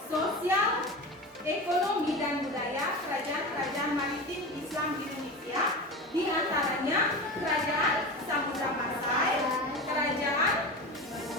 sosial, ekonomi, dan budaya kerajaan-kerajaan maritim Islam di Indonesia, di antaranya Kerajaan Samudra Pasai, Kerajaan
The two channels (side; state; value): both; normal; correlation 0.27